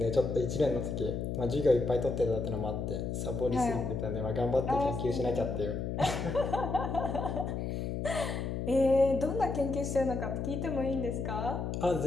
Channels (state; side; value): noise; left; hum, 3 dB below the sound